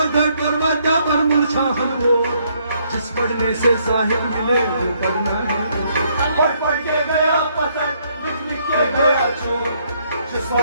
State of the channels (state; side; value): inverted; both; correlation -0.70